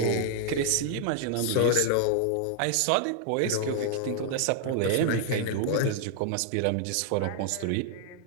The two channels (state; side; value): different; both; correlation 0.00